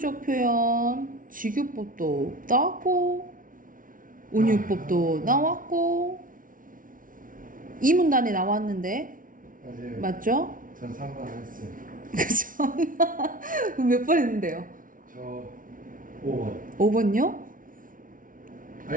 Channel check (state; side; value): late; left; 0.39 ms